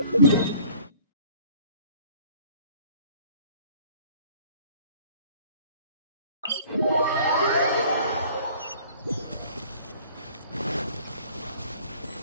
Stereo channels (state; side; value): inverted; both; correlation -0.53